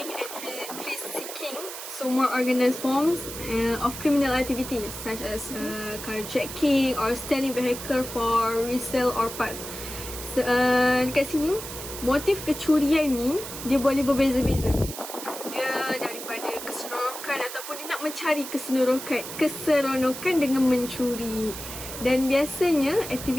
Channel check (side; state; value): right; noise; hiss, 9 dB below the sound